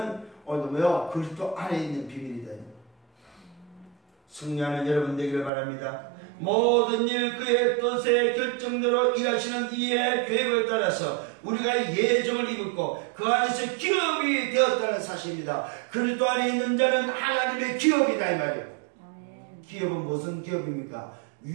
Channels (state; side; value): drops out; left; at 5.5 s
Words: 오늘도 뭐요? 그리스도 안에 있는 비밀이다. 승리하는 여러분 되기를 바랍니다. 모든 일 그의 뜻의 결정대로 일하시는 이의 계획을 따라서 우리가 예정을 입었고 그 안에서 기업이 되었다는 사실입니다. 그리스도 안에 있는 자는 하나님의 기업이다 이 말이에요. 기업은 무슨 기업입니까?